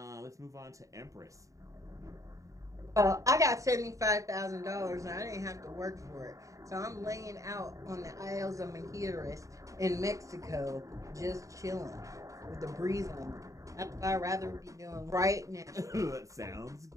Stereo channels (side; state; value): left; late; 0.16 ms